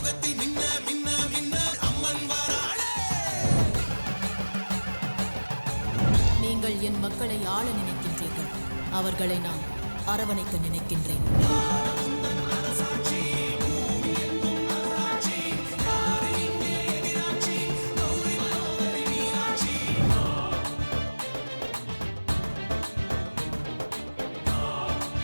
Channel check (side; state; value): both; inverted; correlation -1.00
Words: மின்ன மின்ன மின்ன அம்மன் வராளே. நீங்கள் என் மக்களை ஆள நினைக்கின்றீர்கள், அவர்களை நான் அரவணைக்க நினைக்கின்றேன்.